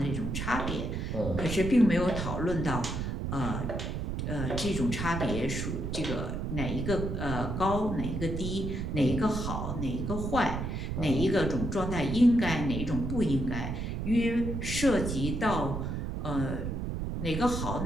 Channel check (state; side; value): noise; right; rumble, 3 dB below the sound